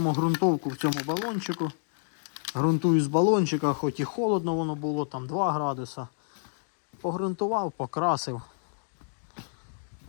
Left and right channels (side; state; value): right; silent; digital silence